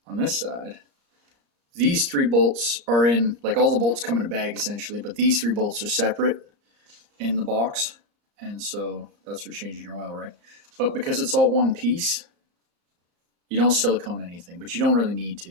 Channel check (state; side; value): late; left; 34 ms